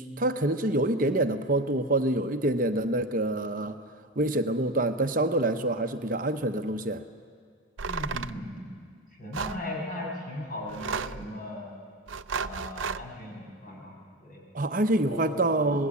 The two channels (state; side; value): normal; both; correlation 0.23